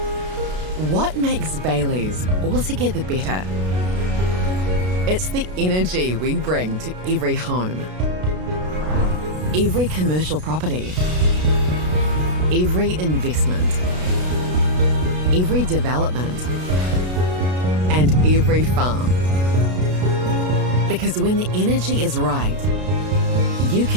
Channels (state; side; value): late; left; 33 ms